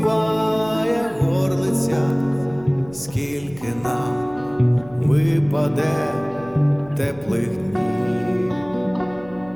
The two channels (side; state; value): right; noise; hum, 21 dB below the sound